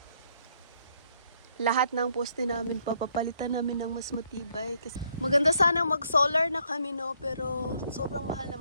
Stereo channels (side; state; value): both; inverted; correlation -0.70